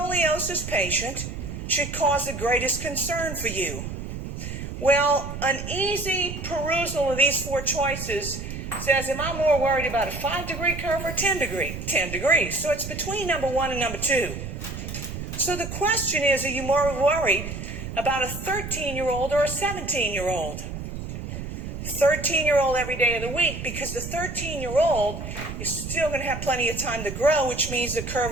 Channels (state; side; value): noise; right; rumble, 7 dB below the sound